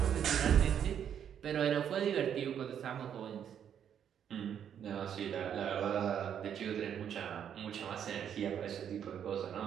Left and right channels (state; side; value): quieter; left; 8.9 dB